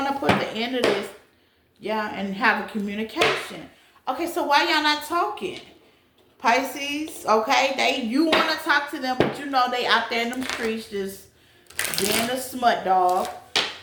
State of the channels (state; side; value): identical; both; correlation 1.00